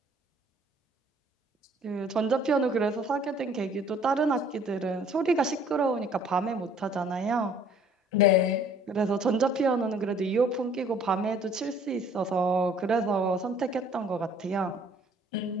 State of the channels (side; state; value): both; normal; correlation 0.56